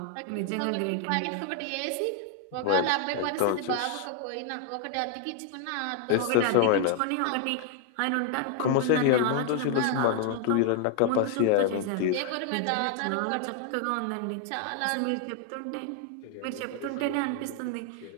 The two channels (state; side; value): different; both; correlation 0.00